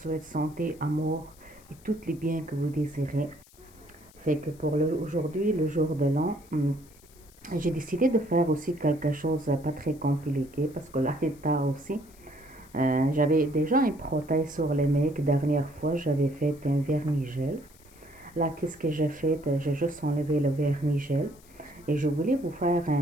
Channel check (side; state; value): left; noise; hiss, 26 dB below the sound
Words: santé, amour et tous les biens que vous désirez. Fait que pour aujourd'hui, le jour de l'an, j'ai décidé de faire aussi quelque chose pas très compliqué parce que là, il est tard aussi. J'avais déjà un protège sur les mecs. Dernière fois, j'avais fait un vernis-gel. Là, qu'est-ce que j'ai fait? J'ai juste enlevé le vernis-gel et je voulais vous faire